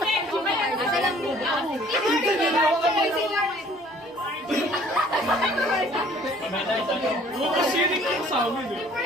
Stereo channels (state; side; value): normal; both; correlation 0.55